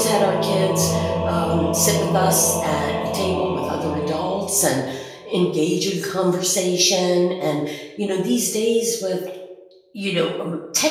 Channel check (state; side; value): identical; both; correlation 1.00